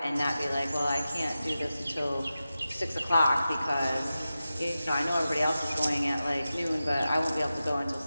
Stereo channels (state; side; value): inverted; both; correlation -0.93